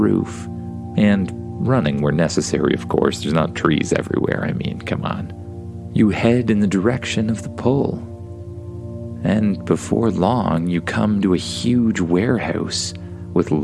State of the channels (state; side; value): identical; both; correlation 1.00